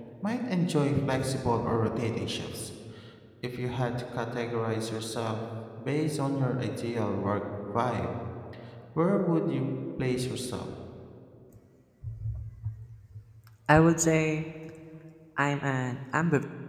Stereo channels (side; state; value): both; identical; correlation 1.00